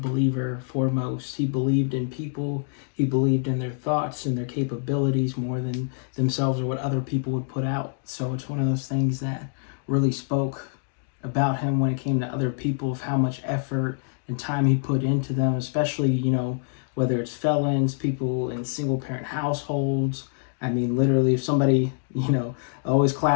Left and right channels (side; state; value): right; silent; digital silence